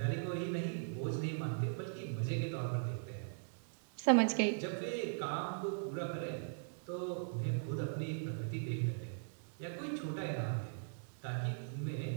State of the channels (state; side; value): silent; left; digital silence